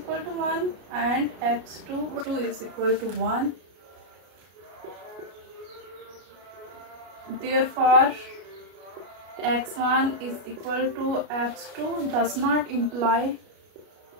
to 1 and x2 is equal to 1. Therefore, x1 is equal to x2 does not imply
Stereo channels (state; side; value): late; left; 33 ms